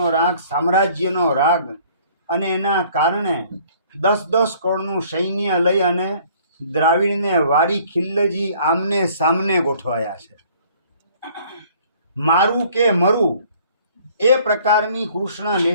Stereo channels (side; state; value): both; inverted; correlation -0.56